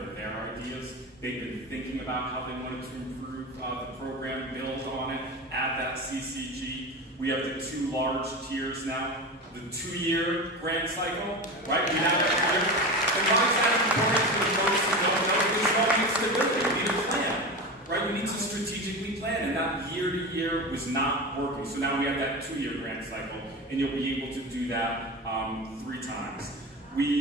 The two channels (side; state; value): both; normal; correlation 0.25